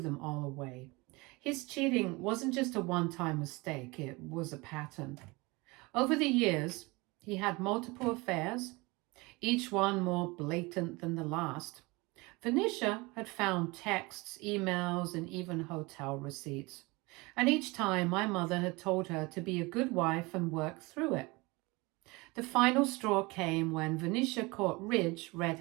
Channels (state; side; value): quieter; left; 24.5 dB